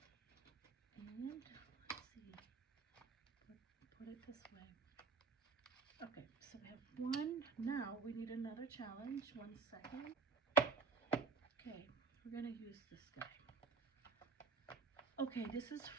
and let's see, put it this way. Okay, so we have one. Now we need another challenge. 1 second. Okay, we're gonna use this guy. Okay, this is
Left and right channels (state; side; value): quieter; left; 4.7 dB